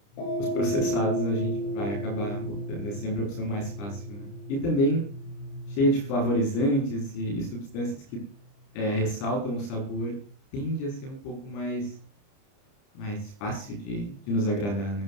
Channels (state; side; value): late; right; 30 ms